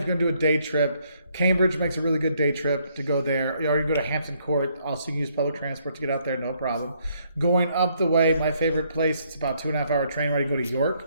you're going to do a day trip, Cambridge makes a really good day trip to go there. You already go to Hampton Court. Also, you can use public transport to get out there, no problem. Going up the way, my favorite place, it's about 2.5 hour train ride. You go to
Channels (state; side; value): inverted; both; correlation -0.70